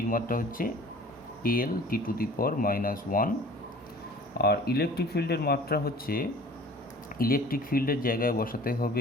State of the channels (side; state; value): both; normal; correlation 0.46